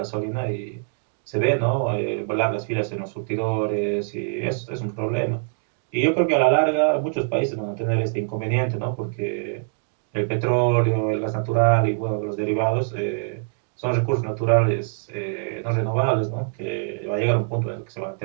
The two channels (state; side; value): silent; left; digital silence